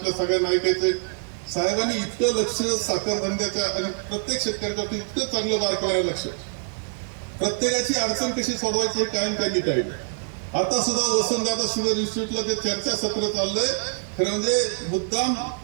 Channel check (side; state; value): left; silent; 57 dB below the other